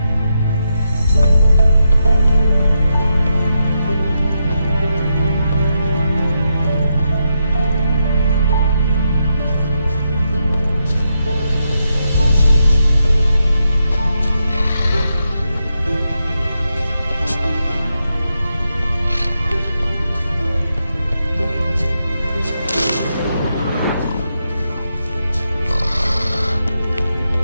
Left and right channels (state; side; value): inverted; both; correlation -0.84